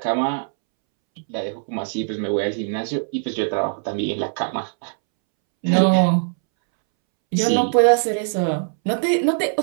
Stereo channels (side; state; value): left; silent; 65 dB below the other